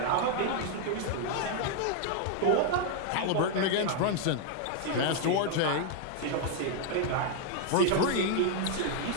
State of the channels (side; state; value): both; different; correlation 0.00